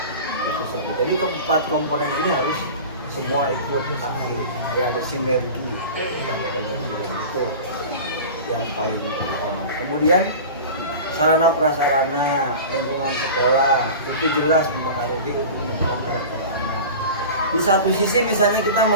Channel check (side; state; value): both; inverted; correlation -0.34